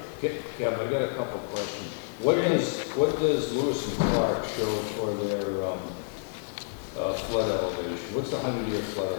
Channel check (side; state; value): right; silent; 57 dB below the other